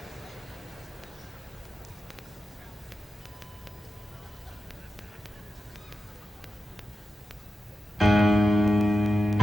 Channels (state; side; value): normal; both; correlation 0.92